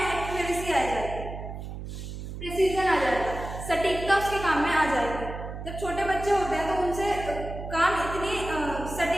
एक्यूरेसी आ जाएगी, प्रिसीजन आ जाएगा, सटीकता उसके काम में आ जाएगी। जब छोटे बच्चे होते हैं तो उनसे काम इतनी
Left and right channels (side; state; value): right; noise; hum, 8 dB below the sound